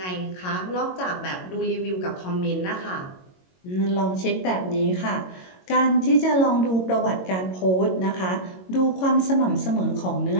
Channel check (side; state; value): right; late; 22 ms